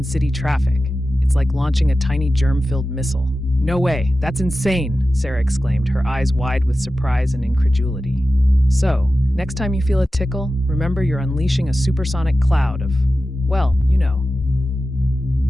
city traffic. It's like launching a tiny germ-filled missile. No way, that's insane, Sarah exclaimed, her eyes wide with surprise and incredulity. So, next time you feel a tickle, remember you're unleashing a supersonic cloud of, well, you know.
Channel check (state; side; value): normal; both; correlation 0.93